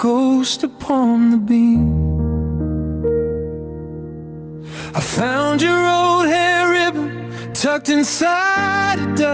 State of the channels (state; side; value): identical; both; correlation 1.00